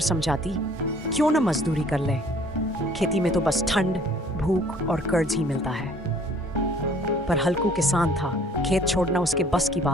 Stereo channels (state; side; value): normal; both; correlation 0.55